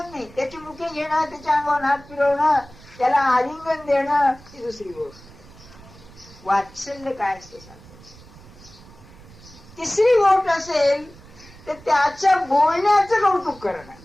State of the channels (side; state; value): right; noise; rumble, 22 dB below the sound